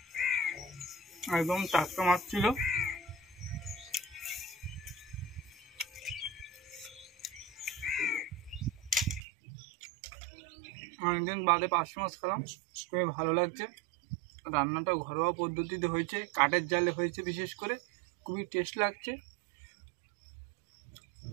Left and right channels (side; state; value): left; drops out; at 9.2 s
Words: একদম টাটকা মাছ ছিল। অনেকদিন বাদে পার্শে মাছ খেলাম, খুবই ভালো লাগছে। রান্নাটা ঘরোয়া পদ্ধতিতে হয়েছে, কাঠের জালে হয়েছে, বিশেষ করে খুবই টেস্ট লাগছে।